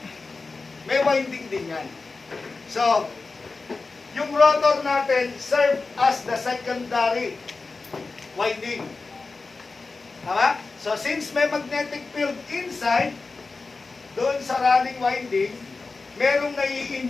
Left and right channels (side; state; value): right; quieter; 4.0 dB